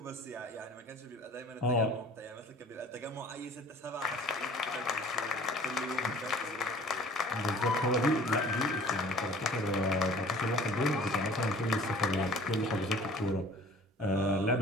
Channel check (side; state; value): both; normal; correlation 0.48